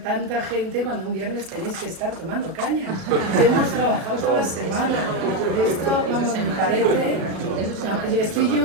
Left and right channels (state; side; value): late; left; 37 ms